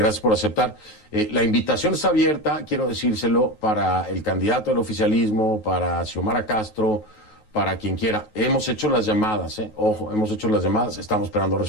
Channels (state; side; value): late; right; 9.4 ms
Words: por aceptar. La invitación está abierta, quiero decírselo, para el candidato del oficialismo, para Xiomara Castro, para quien quiera. Hemos hecho las llamadas, ojo, hemos hecho las llamadas, estamos esperando